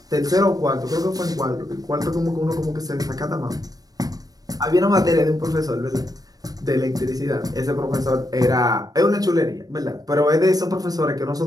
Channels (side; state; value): left; late; 0.18 ms